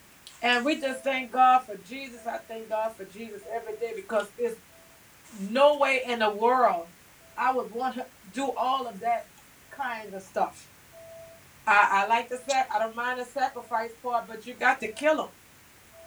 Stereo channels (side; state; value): both; identical; correlation 1.00